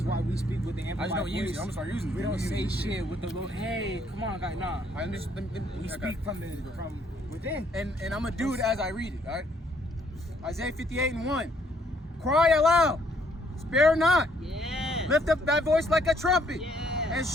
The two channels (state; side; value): normal; both; correlation 0.67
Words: why we speak with the I amplified just don't voice. use it. I'm gonna start using it. We don't Use say it. shit with the little, hey, come on, guys, nah. I understand. We speak from within. And I'm gonna do it as I read it, all right? Isaiah 58:1. Cry aloud, spare not. Yeah. Lift up thy voice like a trumpet, Yeah. and